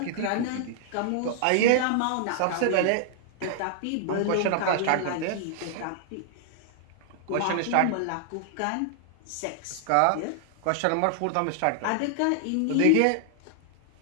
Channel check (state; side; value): different; both; correlation -0.01